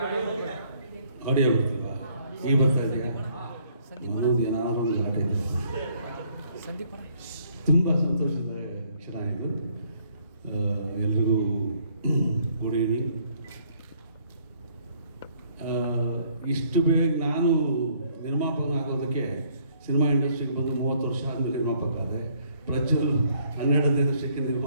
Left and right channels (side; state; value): both; inverted; correlation -0.65